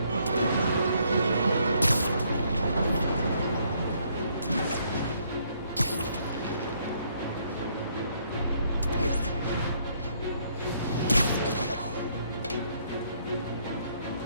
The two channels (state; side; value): inverted; both; correlation -0.69